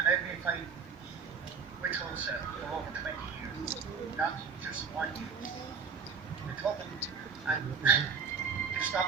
I've been fighting with TULSA for over 20 years, not just 1 year. We took them and to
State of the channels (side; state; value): left; quieter; 5.7 dB